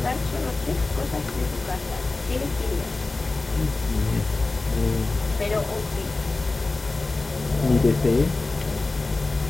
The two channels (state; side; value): quieter; right; 3.4 dB